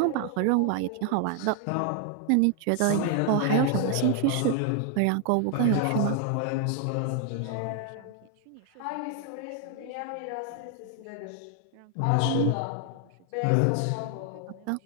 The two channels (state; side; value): different; both; correlation 0.00